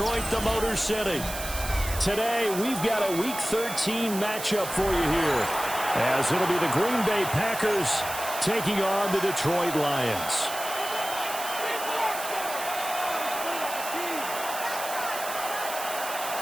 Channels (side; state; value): right; noise; hiss, 8 dB below the sound